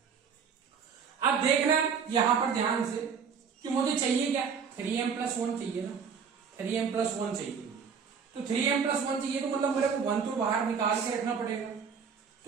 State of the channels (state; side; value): quieter; left; 6.4 dB